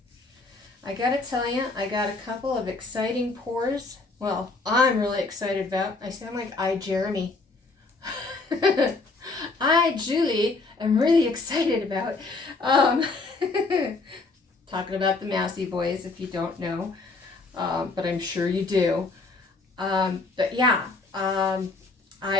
I gotta tell you, I got a couple of exciting pours. Well, I'm really excited about. I sound like Jeremy. Julie, am really excited about. Talking about the Massey boys, if you don't know, but I'm sure you do. But yeah, I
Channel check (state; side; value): quieter; right; 3.7 dB